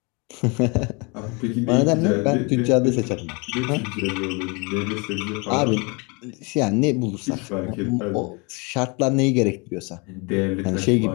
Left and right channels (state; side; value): quieter; right; 30.2 dB